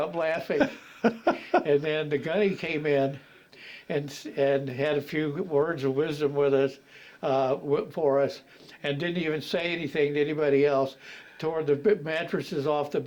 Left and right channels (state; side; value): identical; both; correlation 1.00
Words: laughing. And then the gunny came in and had a few words of wisdom with us, for us, and didn't even say anything to anybody else. Tore the mattresses off the